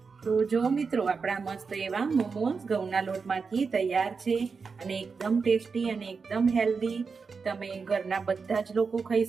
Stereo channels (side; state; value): left; quieter; 5.1 dB